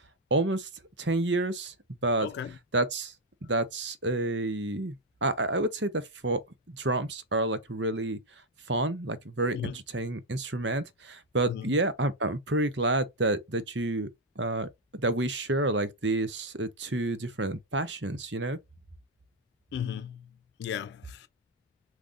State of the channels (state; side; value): normal; both; correlation 0.02